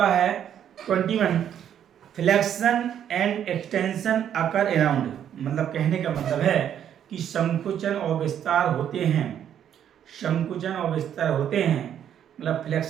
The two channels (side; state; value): left; quieter; 9.6 dB